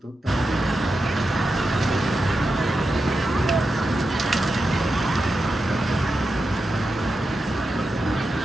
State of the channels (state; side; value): normal; both; correlation 0.89